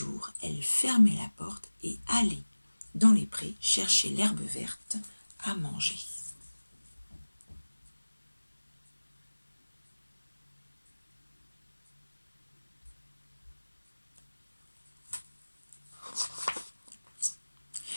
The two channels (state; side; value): inverted; both; correlation -1.00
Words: elle fermait la porte et allait dans les prés chercher l'herbe verte à manger.